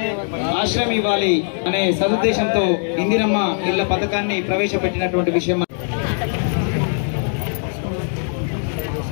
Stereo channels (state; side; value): silent; right; 60 dB below the other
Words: ఆశ్రయం ఇవ్వాలి అనే సదుద్దేశంతో ఇందిరమ్మ ఇళ్ల పథకాన్ని ప్రవేశపెట్టినటువంటి విషయం.